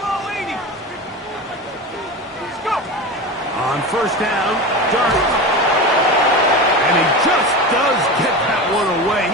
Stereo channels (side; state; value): both; normal; correlation 0.26